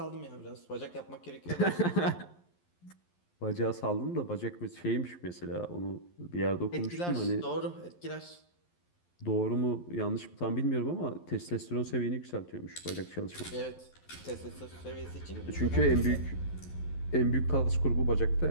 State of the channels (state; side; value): late; right; 11 ms